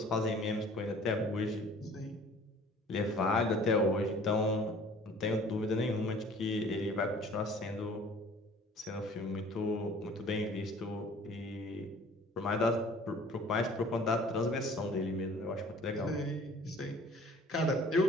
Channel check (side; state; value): both; normal; correlation 0.51